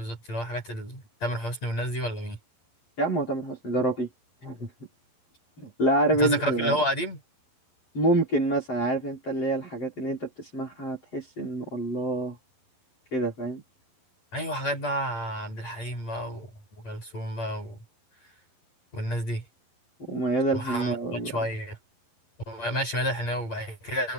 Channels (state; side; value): late; right; 11 ms